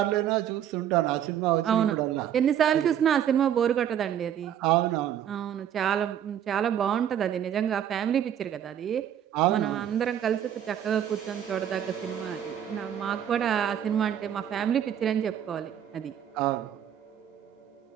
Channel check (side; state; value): left; quieter; 9.9 dB